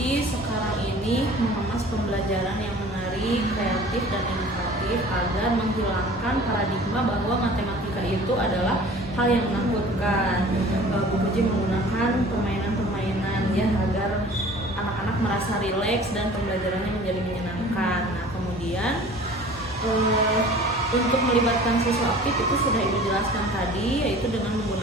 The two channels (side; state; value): both; normal; correlation 0.45